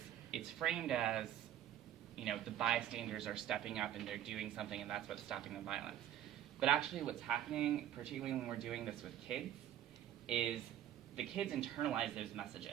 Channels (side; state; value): left; quieter; 11.4 dB